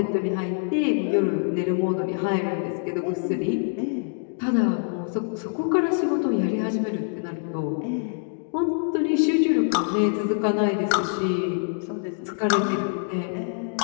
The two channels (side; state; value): right; silent; digital silence